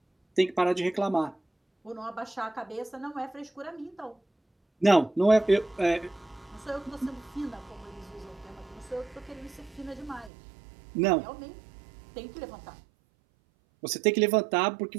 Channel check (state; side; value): drops out; left; at 10.3 s